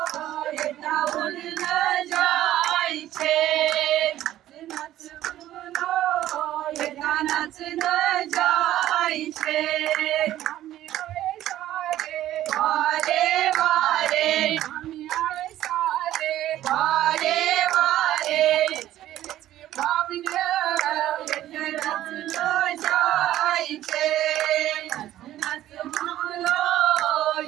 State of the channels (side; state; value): left; quieter; 13.4 dB